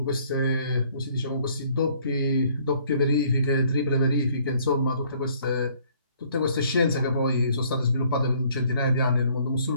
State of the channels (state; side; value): inverted; both; correlation -0.61